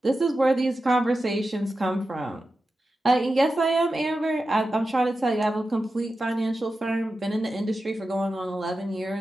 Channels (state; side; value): normal; both; correlation 0.92